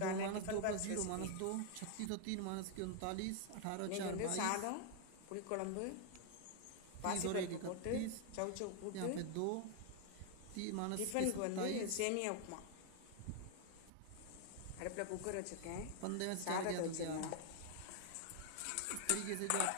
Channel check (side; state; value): both; different; correlation 0.00